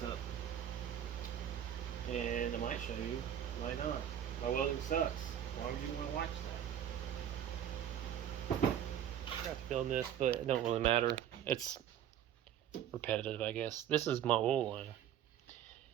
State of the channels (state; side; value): quieter; left; 10.1 dB